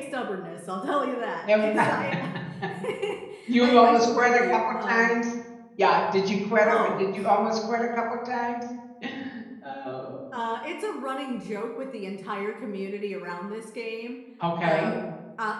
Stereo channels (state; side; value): identical; both; correlation 1.00